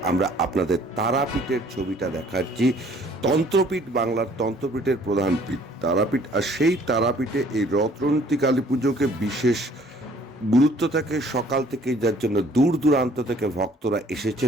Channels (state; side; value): normal; both; correlation 0.57